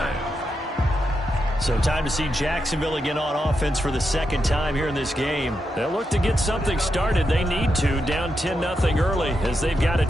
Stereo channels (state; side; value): normal; both; correlation 0.85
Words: So time to see Jacksonville again on offense for the 2nd time here in this game. They'll look to get something started. They need to, down 10-0 early as they've got it